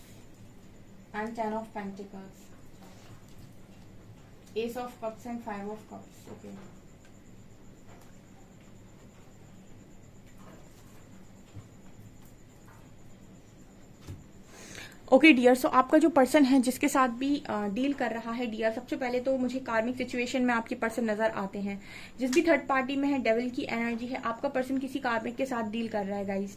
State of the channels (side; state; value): both; identical; correlation 1.00